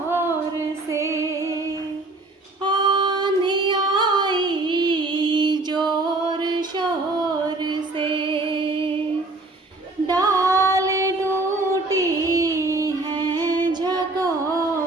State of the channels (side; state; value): left; quieter; 3.0 dB